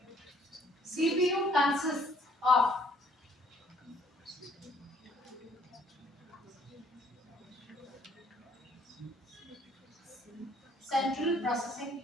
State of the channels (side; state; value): both; normal; correlation 0.62